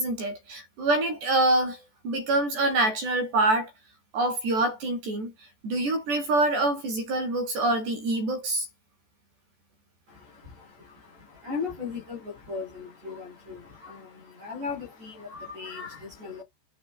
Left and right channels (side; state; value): left; late; 14 ms